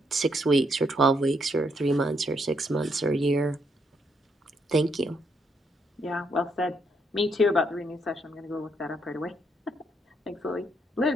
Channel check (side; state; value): both; normal; correlation 0.75